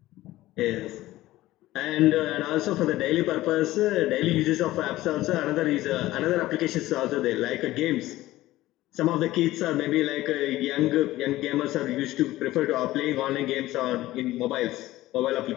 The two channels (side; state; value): right; quieter; 16.5 dB